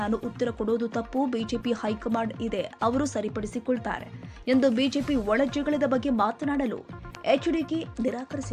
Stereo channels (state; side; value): identical; both; correlation 1.00